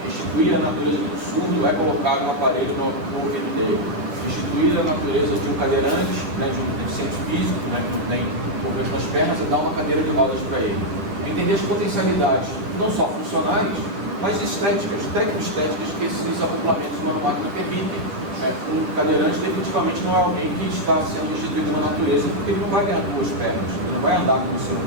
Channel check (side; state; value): left; late; 10 ms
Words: restituir a natureza do surdo é colocar um aparelho no ouvido dele. Restituir a natureza de um cadeirante, de um deficiente físico, que não tem movimento nas pernas, é dar uma cadeira de rodas para ele. Entender as potencialidades, não só funcionais, mas estéticas, tecnoestéticas que esses acoplamentos humano-máquina permitem. Um cadeirante definitivamente não é alguém que está sendo instituído na natureza, porque ele não vai ganhar duas pernas, ele não vai andar como um ser